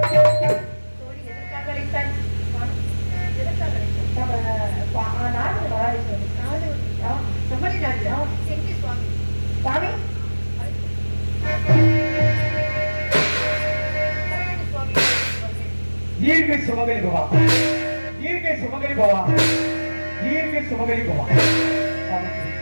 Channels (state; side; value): inverted; both; correlation -1.00